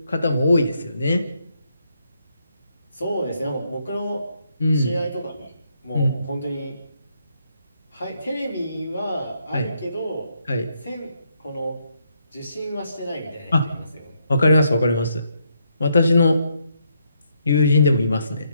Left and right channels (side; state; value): both; inverted; correlation -0.76